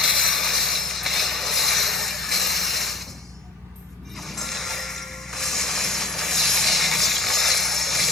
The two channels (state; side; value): quieter; right; 3.0 dB